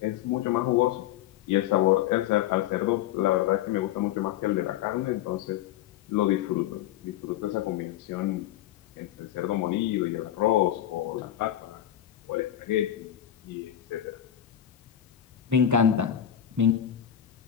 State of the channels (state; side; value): quieter; right; 11.2 dB